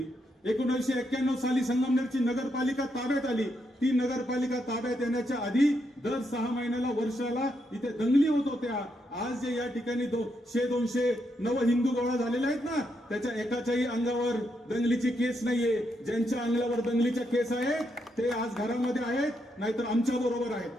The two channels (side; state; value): both; normal; correlation 0.80